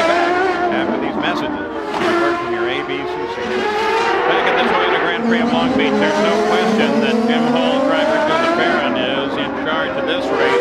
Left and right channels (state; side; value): identical; both; correlation 1.00